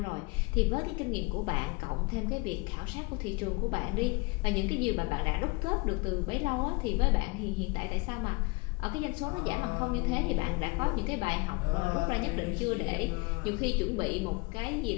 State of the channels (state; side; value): quieter; right; 27.5 dB